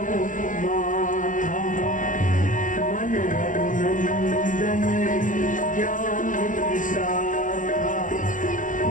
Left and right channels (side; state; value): right; late; 0.38 ms